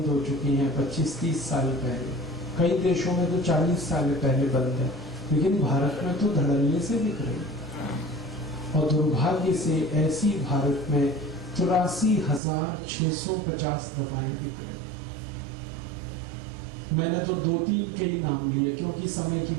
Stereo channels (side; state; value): left; drops out; at 12.4 s